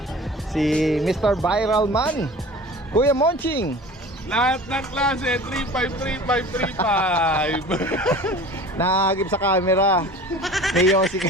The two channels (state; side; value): normal; both; correlation 0.40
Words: Si Mr. Viral Man. Kuya Monching. Lahat ng klase, 353535. Nakahagip sa camera. May Yossi